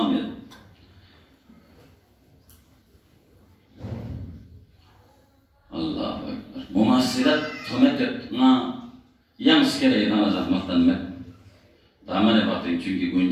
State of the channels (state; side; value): identical; both; correlation 1.00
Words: है अल्लाह अकबर मुमासिलत हमें कितना यंग्स के लिए ना ज़हमतन में दामने बातें चूँकि